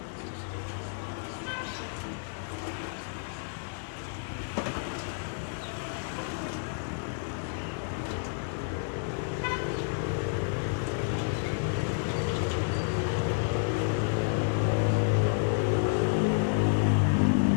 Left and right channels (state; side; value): silent; right; digital silence